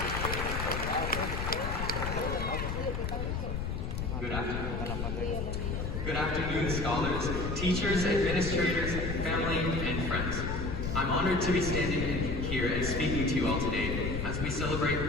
Good afternoon, scholars, teachers, administrators, family, and friends. I'm honored to be standing here and speaking to you all today as we celebrate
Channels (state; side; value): noise; left; rumble, 2 dB below the sound